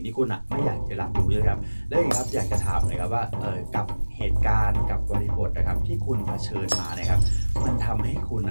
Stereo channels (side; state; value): both; inverted; correlation -1.00